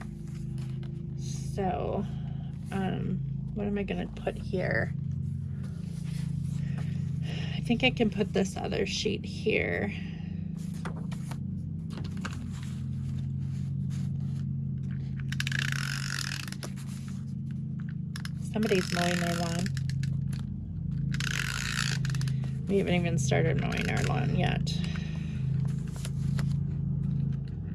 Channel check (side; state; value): both; identical; correlation 1.00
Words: So, what am I gonna put here? I think I can put this other sheet here. Somebody's mowing their lawn. We haven't even started mowing our lawn yet.